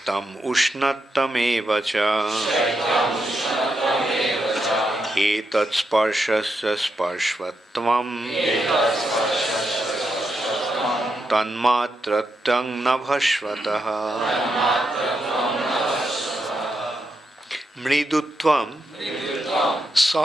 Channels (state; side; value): normal; both; correlation 0.84